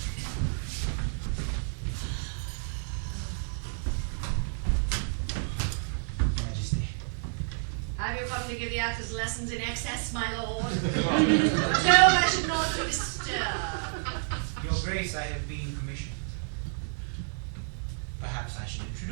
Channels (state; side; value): silent; left; digital silence